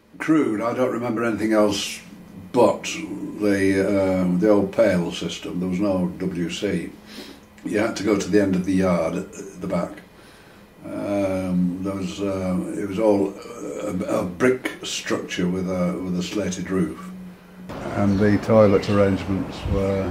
crude. I don't remember anything else but the old pail system. There was no WC. You had to go to the end of the yard at the back. It was all a brick structure with a slated roof. And the toilet arrangements were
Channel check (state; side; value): identical; both; correlation 1.00